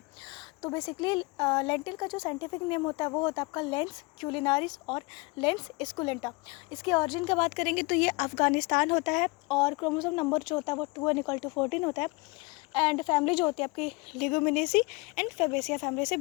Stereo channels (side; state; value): right; quieter; 26.5 dB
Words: तो बेसिकली लेंटिल का जो साइंटिफिक नेम होता है वो होता है आपका लेंस क्यूलिनारिस और लेंस स्कुलेंटा। इसकी ऑरिजिन की बात करेंगे तो ये अफ़गानिस्तान होता है और क्रोमोसोम नंबर जो होता है वो 2=14 होता है। एंड फैमिली जो होती है आपकी लिगुमिनेसी एंड फेबेसिया फैमिली से